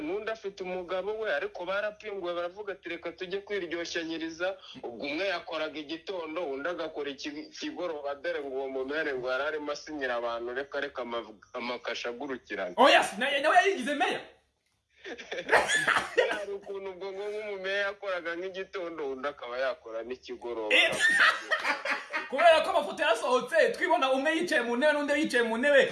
n'undi afite umugabo we ariko barapinguwe baravuga ati reka tujye kwiryoshanyiriza ubwo umwe yakoraga igitondo undi agakora ikigoroba dore ngo uwo mumere ngo yari arimo asinyira abantu reka amakasha agurukirana nawe yayigize meya hari ukuntu ubwo nk'umumeya yakoraga nk'igitondo undi akaba yakora n'ikigoroba kubera ko amafoto yarasohotse twibona umwe yicaye mu ntebe n'undi yicaye mu ntebe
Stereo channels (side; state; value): both; identical; correlation 1.00